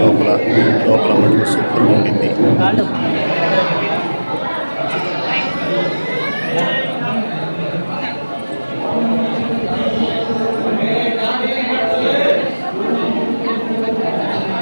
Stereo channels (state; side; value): inverted; both; correlation -1.00